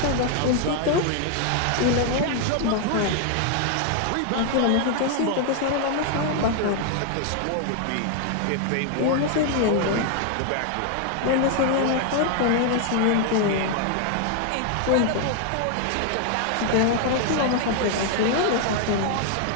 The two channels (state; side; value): different; both; correlation 0.00